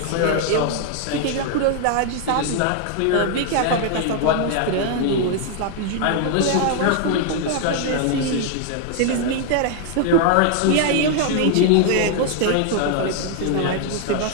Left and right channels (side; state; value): both; different; correlation 0.00